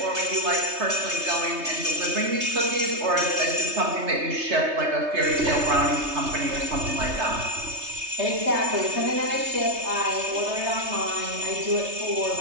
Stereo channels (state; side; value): late; left; 3.3 ms